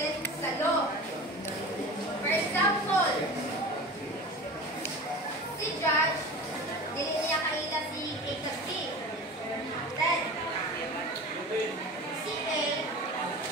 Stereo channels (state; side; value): normal; both; correlation 0.34